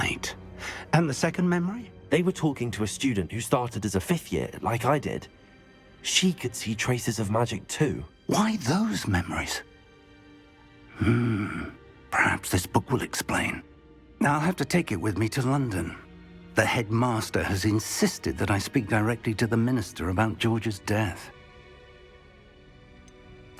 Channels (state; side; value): identical; both; correlation 1.00